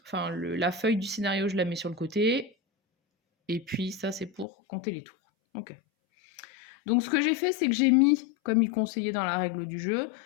enfin la feuille du scénario, je la mets sur le côté. Et puis ça, c'est pour compter les tours. Ok. Donc ce que j'ai fait, c'est que j'ai mis, comme il conseillait dans la règle du jeu,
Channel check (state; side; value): drops out; right; at 4.5 s